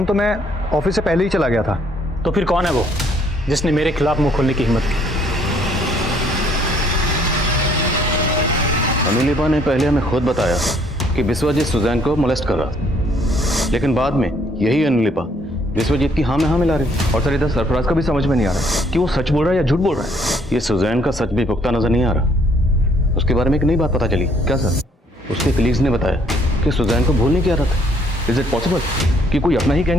तो मैं ऑफिस से पहले ही चला गया था। तो फिर कौन है वो जिसने मेरे खिलाफ मुंह खोलने की हिम्मत की? अनुलिपा ने पहले हमें खुद बताया कि विश्वजीत सुजैन को मोलेस्ट कर रहा था, लेकिन बाद में यही अनुलिपा विश्वजीत की हाँ में हाँ मिला रही। और सर इधर सरफराज का भी समझ में नहीं आ रहा कि वो सच बोल रहा है या झूठ बोल रहा है। ये सुजैन का सच भी पुख्ता नजर नहीं आ रहा। उसके बारे में एक नई बात पता चली। क्या सर? उसके कलीग्स ने बताया कि सुजैन को भूलने की आदत है। इज इट पॉसिबल कि कोई अपना ही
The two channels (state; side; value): normal; both; correlation 0.65